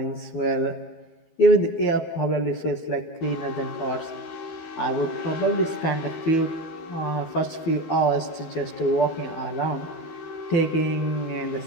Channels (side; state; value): right; late; 12 ms